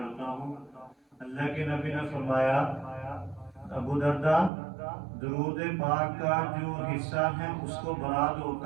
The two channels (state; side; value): drops out; left; at 4.5 s